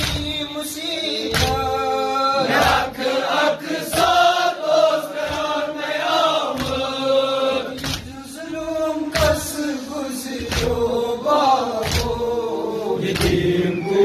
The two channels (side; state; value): both; identical; correlation 1.00